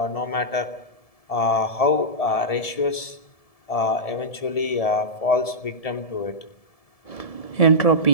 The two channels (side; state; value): right; late; 1.7 ms